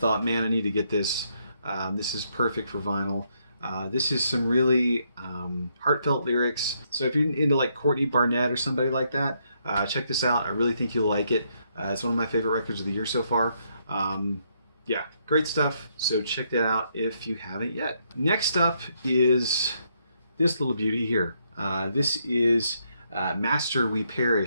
man, I need to get this. This is perfect for vinyl. This is some really heartfelt lyrics. So if you're into like Courtney Barnett or somebody like that, check this out. I really think you'll like it. It's one of my favorite records of the year so far. Yeah, great stuff. So check that out if you haven't yet. Next up is this little beauty here. This is Master We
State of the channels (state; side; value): inverted; both; correlation -0.75